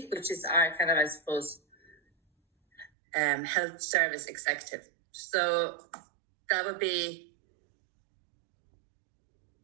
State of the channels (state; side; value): drops out; left; at 2.9 s